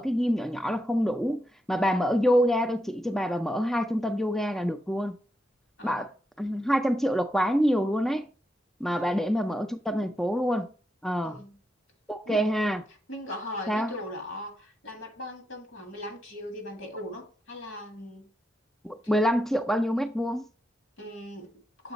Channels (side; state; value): both; normal; correlation 0.85